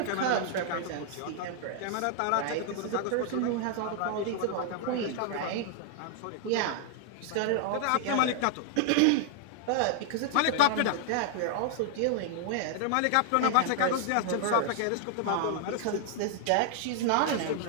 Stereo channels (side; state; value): both; different; correlation -0.01